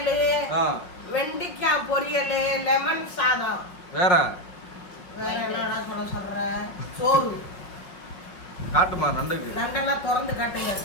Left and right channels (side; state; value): right; late; 5.2 ms